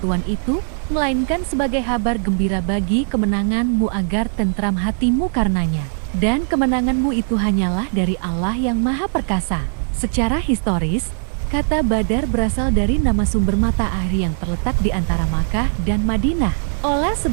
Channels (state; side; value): silent; left; digital silence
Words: itu, melainkan sebagai kabar gembira bagi kemenanganmu agar tentram hatimu karenanya. Dan kemenanganmu itu hanyalah dari Allah yang Maha Perkasa. Secara historis, kata Badar berasal dari nama sumber mata air yang terletak di antara Makkah dan Madinah. Oleh